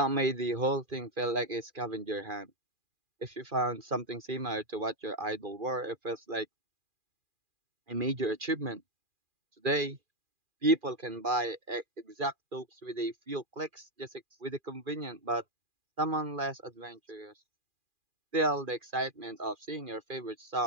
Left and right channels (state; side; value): late; left; 2.4 ms